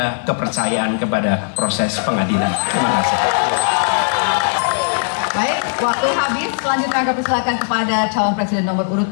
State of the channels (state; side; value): silent; right; digital silence